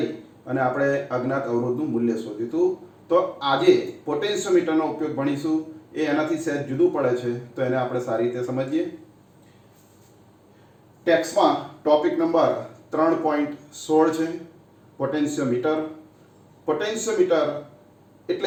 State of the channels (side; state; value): both; identical; correlation 1.00